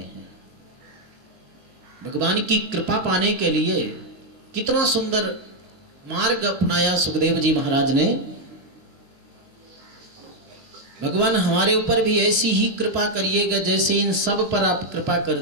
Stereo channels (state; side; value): late; left; 22 ms